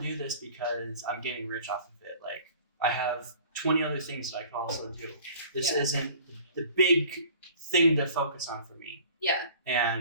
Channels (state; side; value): inverted; both; correlation -0.47